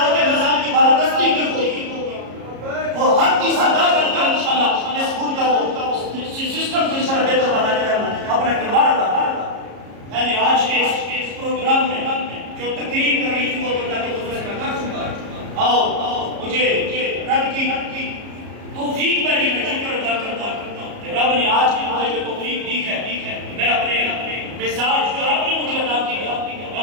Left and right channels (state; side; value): late; left; 34 ms